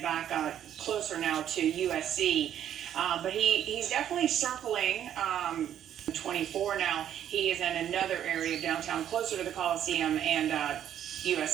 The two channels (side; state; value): left; quieter; 10.3 dB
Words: back closer now to USC. But he's definitely circling 24 now. He is in another area of downtown, closer to the Coliseum and